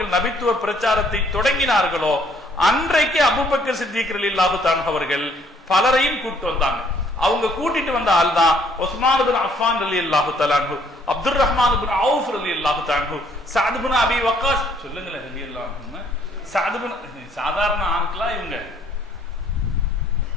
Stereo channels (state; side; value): normal; both; correlation 0.64